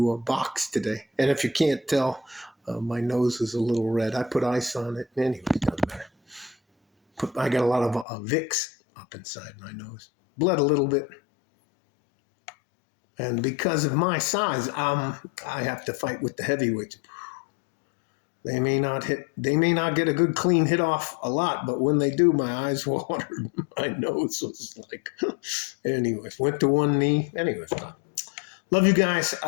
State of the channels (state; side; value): drops out; right; at 8.1 s